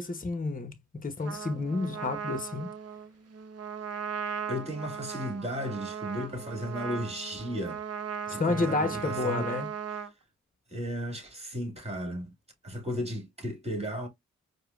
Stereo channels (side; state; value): both; normal; correlation 0.50